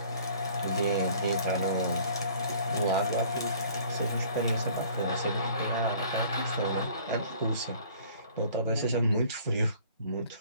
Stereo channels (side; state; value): both; inverted; correlation -0.53